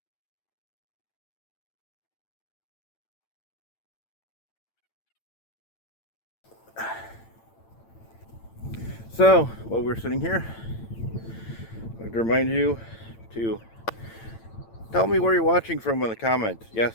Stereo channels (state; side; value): late; right; 8.9 ms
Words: So, while we're sitting here, I'd like to remind you to tell me where you're watching from in the comments.